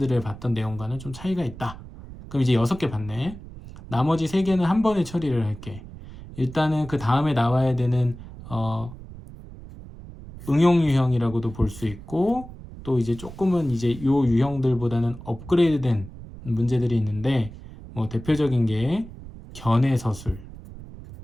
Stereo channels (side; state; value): right; noise; rumble, 15 dB below the sound